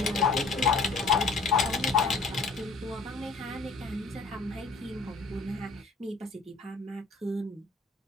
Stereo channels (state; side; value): quieter; right; 3.9 dB